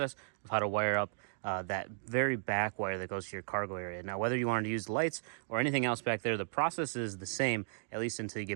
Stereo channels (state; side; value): silent; left; digital silence